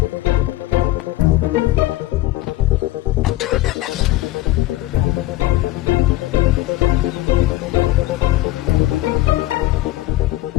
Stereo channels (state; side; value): quieter; right; 16.7 dB